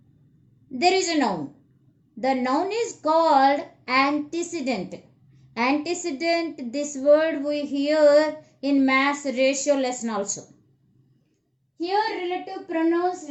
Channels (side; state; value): both; identical; correlation 1.00